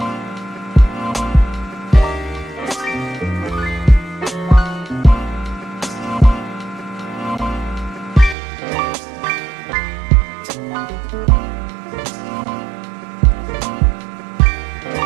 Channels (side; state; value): left; drops out; at 8.3 s